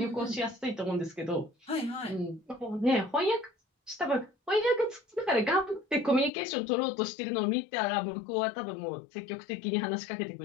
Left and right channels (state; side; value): drops out; right; at 6.3 s